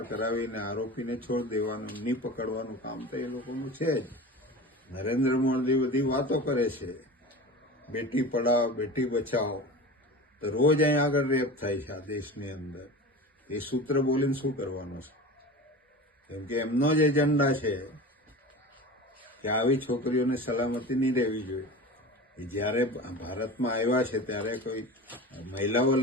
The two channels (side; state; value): both; normal; correlation 0.32